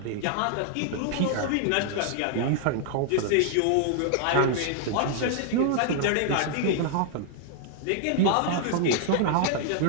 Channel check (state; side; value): different; both; correlation -0.01